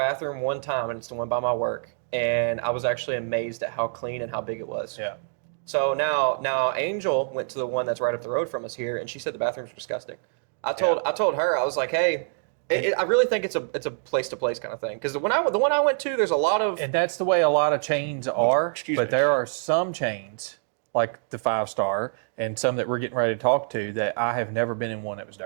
one time, and it's the one by my work, and I was actually amazed at how clean and how big it was. Yeah. So now Angel went to the one that's right up the road from us here, and she said the bathrooms were disgusting. I told her, I was like, hey, I really think it's a place to place kind of thing, because the one I went to, there's a lot of, and that's the way a lot of chains are. But there are some chains like the 5-star and some that we're getting ready to talk to that I have never been in one that was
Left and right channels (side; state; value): left; silent; digital silence